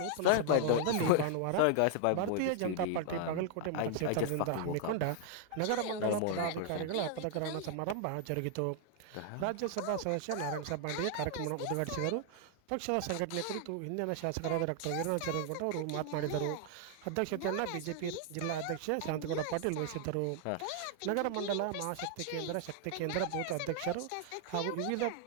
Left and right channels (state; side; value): different; both; correlation 0.00